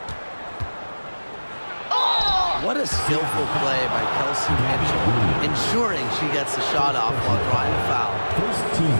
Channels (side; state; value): both; inverted; correlation -1.00